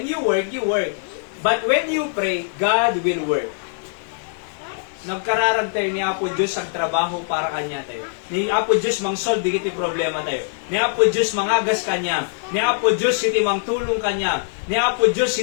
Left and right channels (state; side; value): silent; right; digital silence